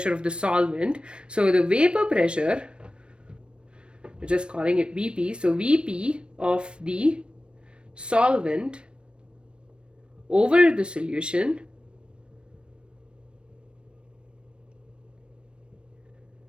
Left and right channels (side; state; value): left; late; 0.057 ms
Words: of the solvent, so the vapor pressure, we're just calling it VP, so VP of the solvent over the solution